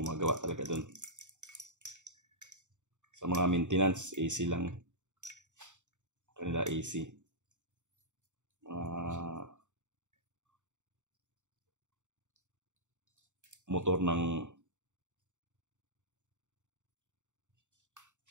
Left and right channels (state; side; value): late; left; 0.85 ms